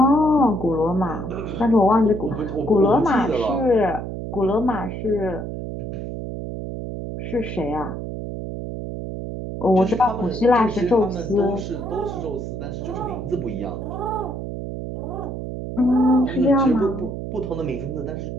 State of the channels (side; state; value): right; noise; hum, 6 dB below the sound